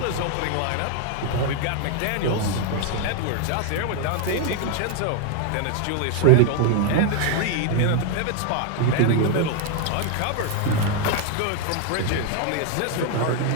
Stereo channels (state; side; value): different; both; correlation 0.00